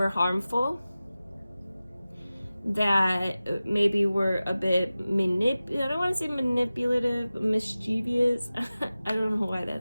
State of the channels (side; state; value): both; inverted; correlation -0.96